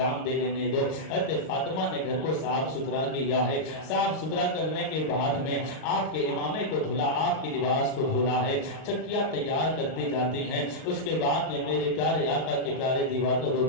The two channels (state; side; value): late; right; 38 ms